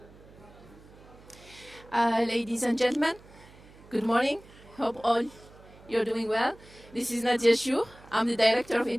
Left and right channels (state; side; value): noise; right; hum, 23 dB below the sound